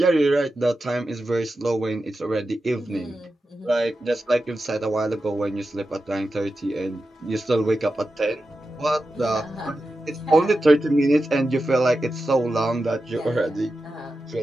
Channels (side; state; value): both; normal; correlation 0.91